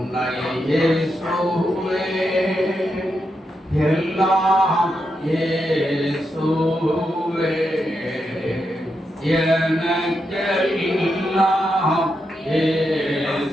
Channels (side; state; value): both; normal; correlation 0.84